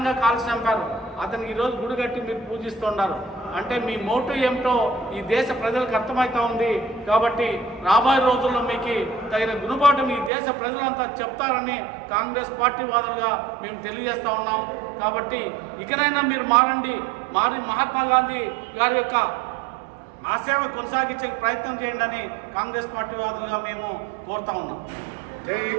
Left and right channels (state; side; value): drops out; left; at 10.3 s